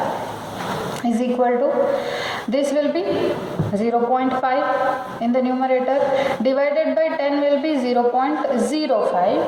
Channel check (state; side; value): identical; both; correlation 1.00